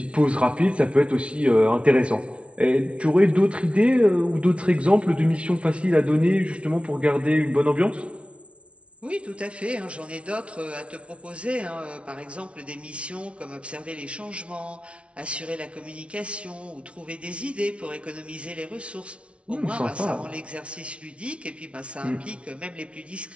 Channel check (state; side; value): late; left; 0.061 ms